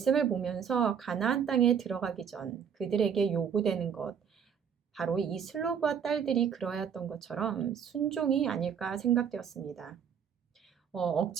보면서 가나안 땅에 들어가기 전 그들에게 요구되는 것, 바로 이 슬로브앗 딸들이 그러했던 것처럼 순종이 아닐까 생각되었습니다.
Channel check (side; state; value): left; quieter; 7.5 dB